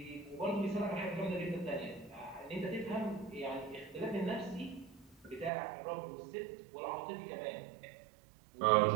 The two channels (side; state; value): left; drops out; at 5.5 s